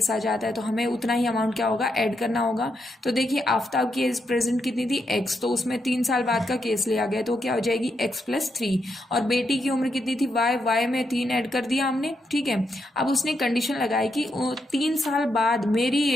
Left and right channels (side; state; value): both; normal; correlation 0.81